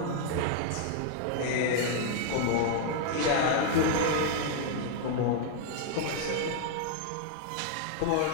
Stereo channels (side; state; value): both; different; correlation 0.00